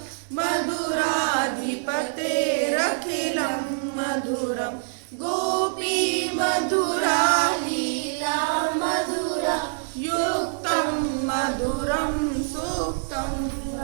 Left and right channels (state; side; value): silent; left; 62 dB below the other